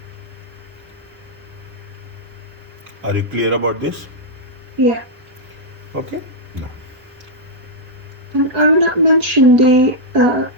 Are you clear about this? Yeah. Okay. No. And I will not mention the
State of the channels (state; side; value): late; left; 4.6 ms